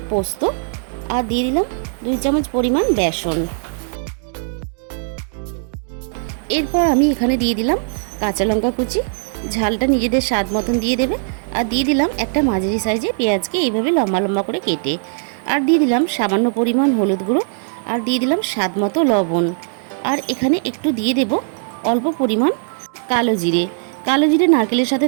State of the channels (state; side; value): silent; left; digital silence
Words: পোস্ত, আর দিয়ে দিলাম 2 চামচ পরিমাণ বেসন। এরপর আমি এখানে দিয়ে দিলাম কাঁচা লঙ্কা কুচি, ঝালটা নিজেদের স্বাদ মতন দিয়ে দেবে। আর দিয়ে দিলাম একটা মাঝারি সাইজে পেঁয়াজকে এইভাবে লম্বা লম্বা করে কেটে। আর দিয়ে দিলাম সামান্য পরিমাণ হলুদ গুঁড়ো, আর দিয়ে দিলাম স্বাদ মতো লবণ। আর এখানে একটু দিয়ে দেব অল্প পরিমাণ কালো জিরে। কালো জিরে নারকেলের সাথে